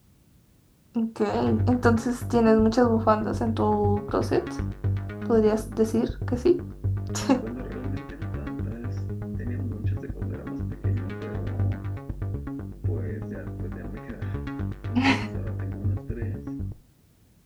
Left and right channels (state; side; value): identical; both; correlation 1.00